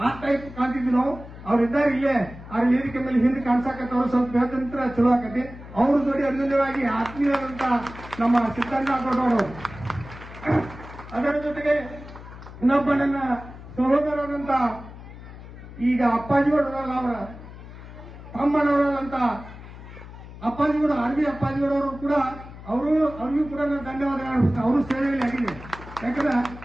ಆ ಟೈಪ್ ಕಾಣ್ತಿದ್ವಿ ನಾವು. ಅವ್ರಿದ್ದಾರೆ ಇಲ್ಲೇ ಅವ್ರ ವೇದಿಕೆ ಮೇಲೆ ಹಿಂದೆ ಕಾಣಿಸಾಕತ್ತವ್ರು, ಸ್ವಲ್ಪ ಹೇಳ್ತಂತ್ರ ಚಲೋ ಆಕತಿ. ಅವ್ರ ಜೋಡಿ ಅನ್ಯೂನ್ಯವಾಗಿ ಆತ್ಮೀಯರಂತ ನಮ್ಮ ಸಿದ್ದಣ್ಣ ಕೊಟ್ಟವರು. ಅದರ ಜೊತೆಗೆ ಇನ್ನೊಬ್ಬ ನನ್ನ ಸಹೋದರರಂತ ಈಗ ಅಪ್ಪಾಜಿಗೌಡರಲ್ಲ ಅವರ ತಮ್ಮನವರಲ್ಲಂತ ಅಪ್ಪಾಜಿಗೌಡ ಆರ್ಮಿ ಅಪ್ಪಾಜಿಗೌಡವರು ಕೂಡ ಅವ್ರಿಗೂ ಕೂಡ ನಾನು ಧನ್ಯವಾದ ಹೇಳ್ಬಿಟ್ಟು ಅವರು ಸೇವೆಯಲ್ಲಿ ಆಗಿದೆ. ಯಾಕಂದ್ರೆ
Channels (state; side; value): noise; left; hum, 15 dB below the sound